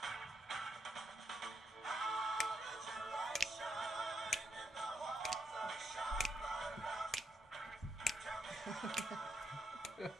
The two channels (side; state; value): both; normal; correlation 0.77